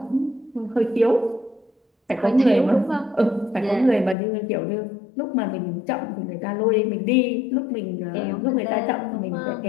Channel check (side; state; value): right; drops out; at 4.2 s